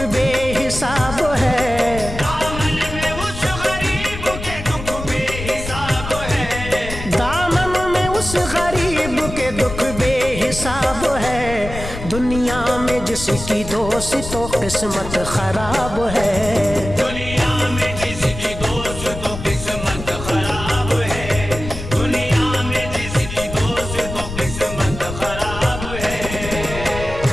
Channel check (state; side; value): noise; left; rumble, 9 dB below the sound